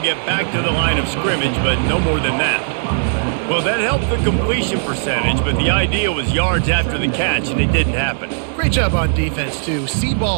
get back to the line of scrimmage, but no more than that. Well, that helped the completion percentage, but the idea was yards after the catch, and it didn't happen. Great job on defense, too. See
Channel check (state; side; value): silent; left; digital silence